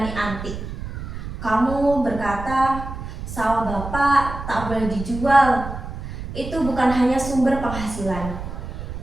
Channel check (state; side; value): noise; right; rumble, 8 dB below the sound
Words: antik. Kamu berkata, sawah bapak tak boleh dijual. Itu bukan hanya sumber penghasilan.